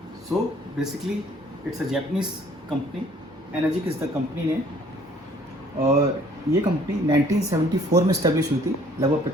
So basically it's a Japanese company. Energic is the company name. और ये company 1974 में establish हुई थी. लगभग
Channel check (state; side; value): normal; both; correlation 0.58